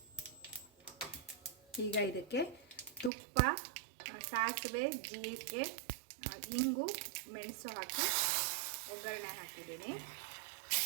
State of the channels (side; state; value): left; drops out; at 3.1 s